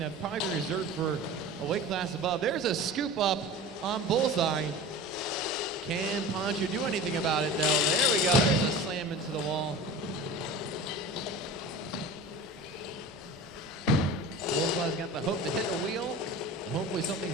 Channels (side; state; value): both; normal; correlation 0.35